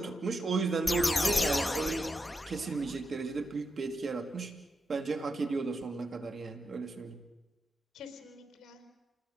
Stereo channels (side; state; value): both; normal; correlation 0.86